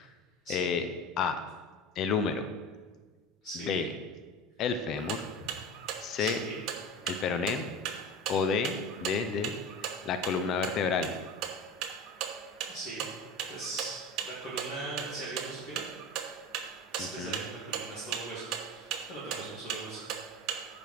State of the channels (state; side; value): normal; both; correlation 0.31